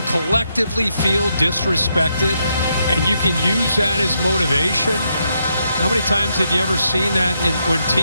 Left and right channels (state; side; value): inverted; both; correlation -0.79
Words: collectively feel disrespected and you can use that as motivation. How many times have you ever seen that when